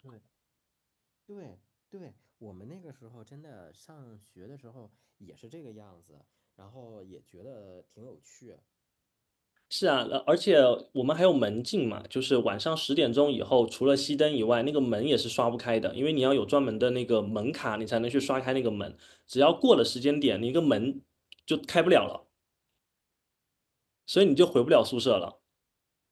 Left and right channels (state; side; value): identical; both; correlation 1.00